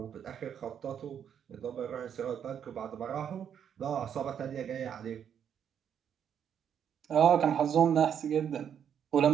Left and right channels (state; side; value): quieter; left; 8.5 dB